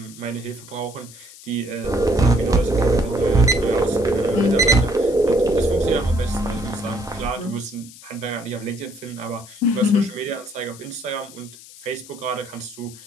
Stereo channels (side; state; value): left; noise; hiss, 19 dB below the sound